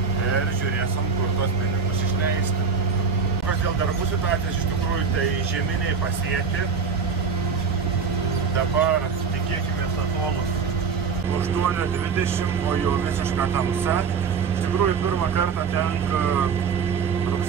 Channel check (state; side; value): quieter; left; 5.6 dB